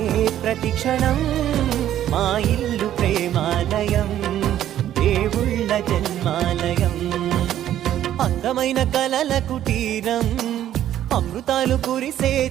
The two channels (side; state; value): left; quieter; 11.7 dB